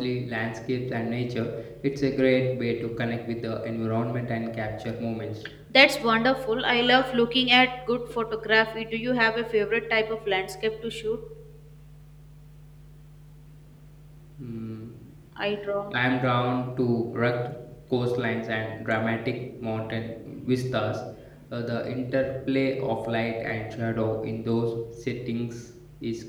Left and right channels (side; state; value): both; identical; correlation 1.00